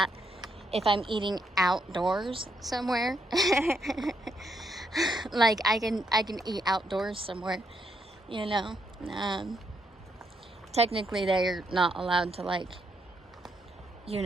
If I'm eating outdoors somewhere, like I can eat outdoors somewhere, you know. Technically they're not allowed to, like, you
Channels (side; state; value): both; normal; correlation 0.77